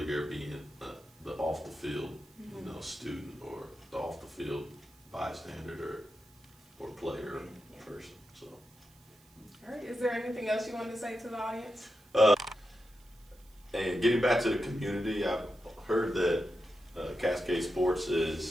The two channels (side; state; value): right; noise; hiss, 30 dB below the sound